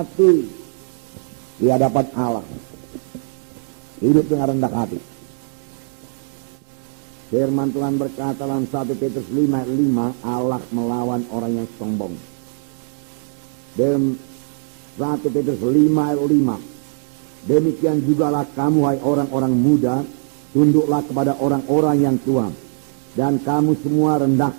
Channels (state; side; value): silent; left; digital silence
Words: di hadapan Allah. Hidup dengan rendah hati. Firman Tuhan berkata dalam 1 Petrus 5 ayat 5, Allah melawan orang yang sombong. Dan 1 Petrus 5 ayat 5, demikian jugalah kamu hai orang-orang muda, tunduklah kepada orang-orang yang tua, dan kamu semua